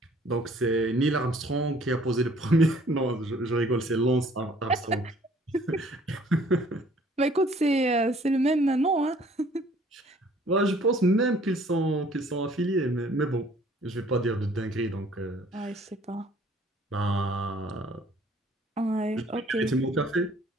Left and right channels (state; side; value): normal; both; correlation 0.57